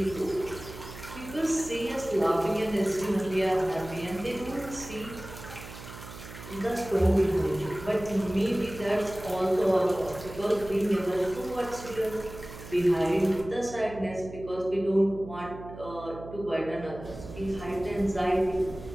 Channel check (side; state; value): right; noise; hum, 14 dB below the sound